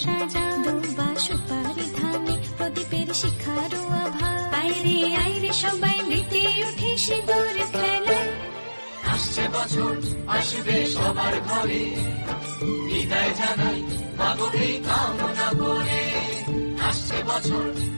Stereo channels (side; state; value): both; inverted; correlation -1.00